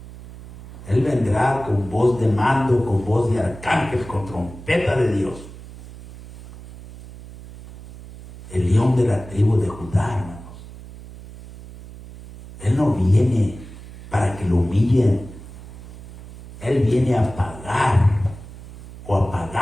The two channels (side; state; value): right; noise; hum, 16 dB below the sound